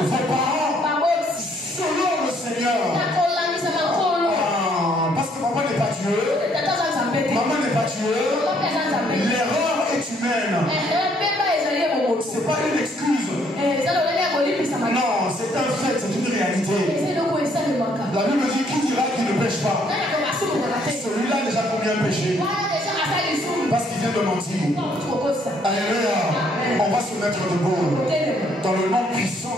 parents selon le Seigneur. Parce que maman n'est pas Dieu. Maman n'est pas Dieu. L'erreur est humaine. C'est pas une excuse. Non, c'est un fait, c'est une réalité. La Bible dit, qui dira qu'il ne pêche pas? Celui-là a déjà combien péché? Parce qu'il vient de mentir. Alléluia. On va se mettre debout dans le nom puissant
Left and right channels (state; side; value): normal; both; correlation 0.67